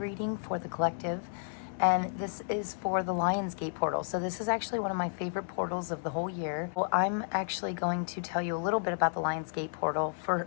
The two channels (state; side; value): silent; right; digital silence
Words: for the collective, and this is for the Lionsgate portal. So this is actually one of my favorite portals of the whole year. Well, I'm actually going to tell you a little bit about the Lionsgate portal. For